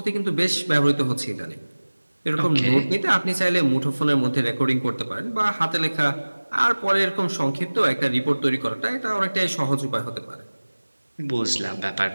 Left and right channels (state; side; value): inverted; both; correlation -1.00